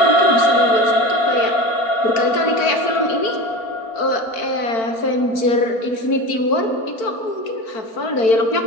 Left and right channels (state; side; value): late; right; 4.5 ms